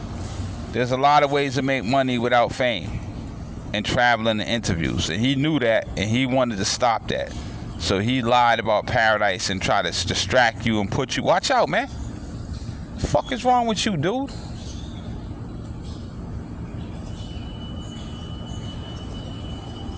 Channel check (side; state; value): both; identical; correlation 1.00